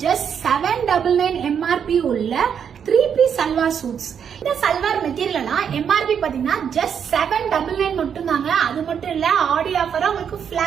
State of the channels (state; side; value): quieter; left; 7.7 dB